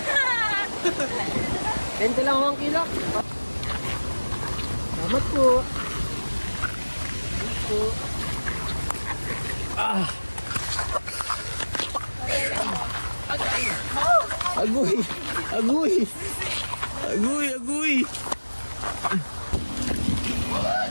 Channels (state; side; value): inverted; both; correlation -1.00